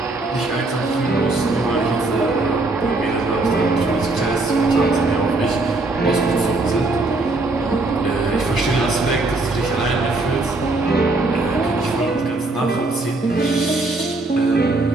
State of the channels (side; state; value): left; quieter; 3.1 dB